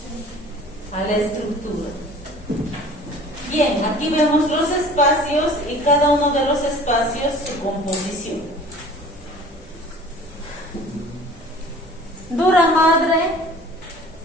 a la estructura. Bien, aquí vemos los espacios y cada uno de los espacios su composición. Dura madre,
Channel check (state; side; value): normal; both; correlation 0.46